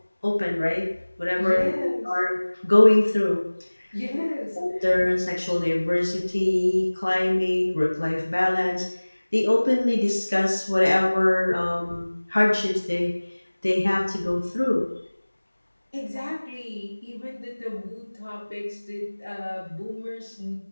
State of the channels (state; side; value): inverted; both; correlation -1.00